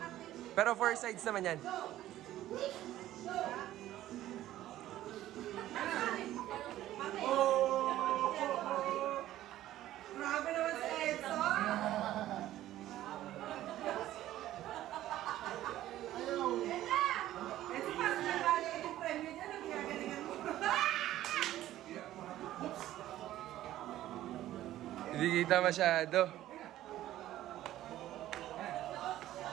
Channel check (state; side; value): quieter; left; 13.9 dB